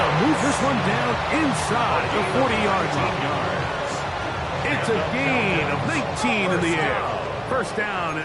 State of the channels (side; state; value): both; identical; correlation 1.00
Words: move this one down inside the 40-yard line. It's a gain of 19 in the air. 1st down,